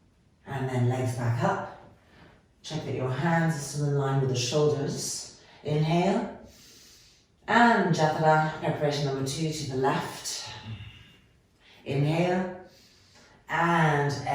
And then legs back up. Check that your hands are still in line with the shoulders. Inhale. And Jathara, preparation number 2 to the left. Inhale. And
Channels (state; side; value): identical; both; correlation 1.00